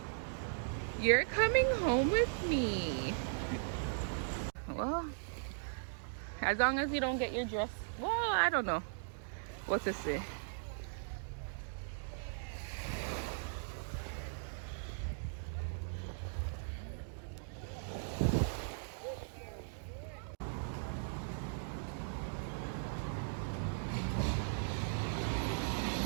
You're coming home with me. Well, as long as you don't get your dress, well, I don't know what to say.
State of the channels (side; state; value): left; silent; digital silence